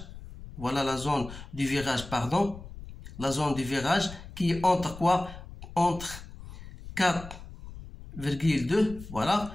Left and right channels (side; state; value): left; noise; rumble, 14 dB below the sound